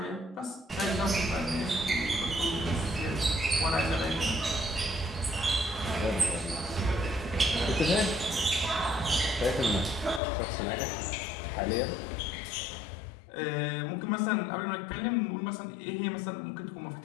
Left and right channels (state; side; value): drops out; right; at 10.2 s